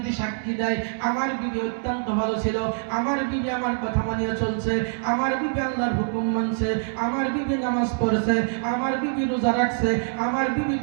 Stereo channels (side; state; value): left; silent; digital silence